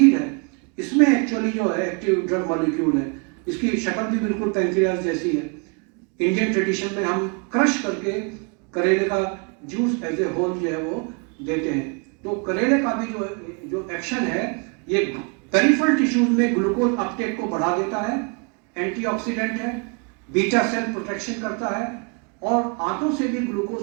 है इसमें एक्चुअली जो है एक्टिव ड्रग मॉलिक्यूल है। इसकी शक्ल भी बिल्कुल पैंक्रियाज जैसी है। इंडियन ट्रेडिशन में हम क्रश करके करेले का जूस एज ए होल जो है वो देते हैं। तो करेले का भी जो एक्शन है ये पेरिफेरल टिश्यूज में ग्लूकोज अपटेक को बढ़ा देता है, एंटीऑक्सीडेंट है, बीटा सेल प्रोटेक्शन करता है और आंतों से भी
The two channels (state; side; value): quieter; left; 35.0 dB